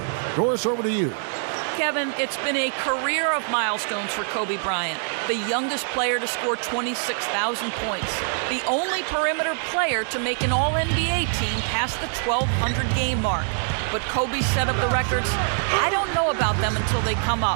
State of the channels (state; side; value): silent; left; 59 dB below the other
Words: Doris, over to you. Kevin, it's been a career of milestones for Kobe Bryant, the youngest player to score 26,000 points, the only perimeter player to make an All-NBA team past the 1,200 game mark. But Kobe set up the records. I don't know about them until they come